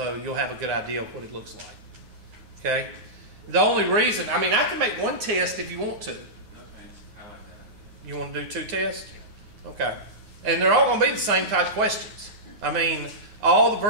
you'll have a good idea of what it looks like. Okay? The only reason, I mean, I can make 1 test if you want to. No thanks. I like that. You want to do 2 tests? Okay. And they're all going to be the same type questions. I mean, all the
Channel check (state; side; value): late; left; 9.5 ms